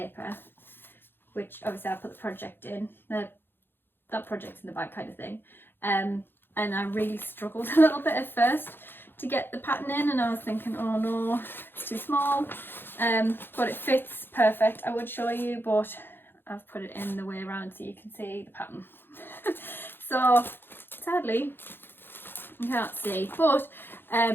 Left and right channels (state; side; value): late; right; 0.10 ms